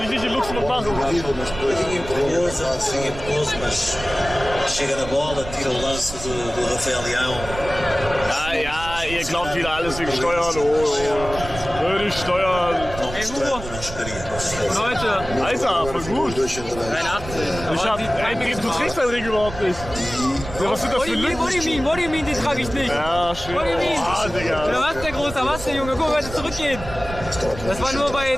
ich nicht in Luxemburg machen. Mas chega na bola, tira o lance do Rafael Leão. Ja, ihr glaubt wieder alles wegen Steuern. Oh, würde ich steuern. não Ey, mostrando Hugo. não chegaria. Leute, Alter, voll gut. 83. Du trägst deinen Ring überhaupt nicht. Ja, was sind das für Lücken? What do you mean, den trage ich nicht. Ja, schön. What do you mean? Ah, Digga. Ja, was, der Großer, was, der Junge? Guck mal, heute zurückgehen. Das war nur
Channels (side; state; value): right; noise; rumble, 11 dB below the sound